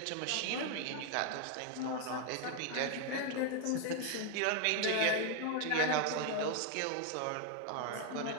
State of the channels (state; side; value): different; both; correlation 0.01